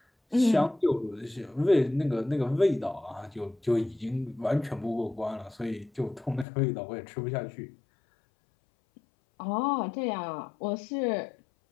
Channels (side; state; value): right; drops out; at 6.5 s